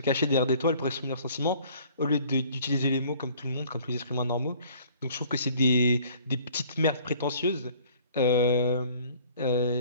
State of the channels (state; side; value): inverted; both; correlation -0.54